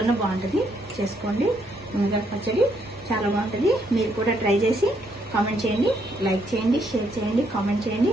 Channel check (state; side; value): normal; both; correlation 0.73